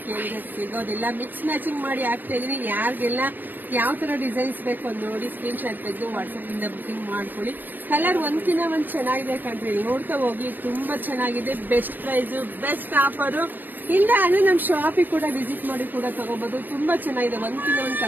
ಕೇಳಿದ್ರೆ ಸಿಗೋದಿಲ್ಲ. ಮಿಕ್ಸ್ ಮ್ಯಾಚಿಂಗ್ ಮಾಡಿ ಹಾಕ್ತಾ ಇದೀನಿ. ಯಾರಿಗೆಲ್ಲ ಯಾವ ತರ ಡಿಸೈನ್ಸ್ ಬೇಕು ನೋಡಿ ಸ್ಕ್ರೀನ್ ಶಾಟ್ ತೆಗೆದು ವಾಟ್ಸ್ಆಪ್ ಇಂದ ಬುಕಿಂಗ್ ಮಾಡ್ಕೊಳ್ಳಿ. ಕಲರ್ ಒಂದ್ಕಿಂತ ಒಂದ್ ಚೆನ್ನಾಗಿದೆ ಕಣ್ರಿ, ನೋಡ್ತಾ ಹೋಗಿ. ತುಂಬಾ ಚೆನ್ನಾಗಿದೆ, ಬೆಸ್ಟ್ ಪ್ರೈಸ್, ಬೆಸ್ಟ್ ಆಫರ್. ಇಲ್ಲ ಅಂದ್ರೆ ನಮ್ಮ ಶಾಪಿಗೆ ಕೂಡ ವಿಸಿಟ್ ಮಾಡಿ ಕೂಡ ತಗೋಬಹುದು. ತುಂಬಾ ಚೆನ್ನಾಗಿದೆ, ಒಂದ್ಕಿಂತ ಒಂದು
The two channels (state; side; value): late; left; 0.089 ms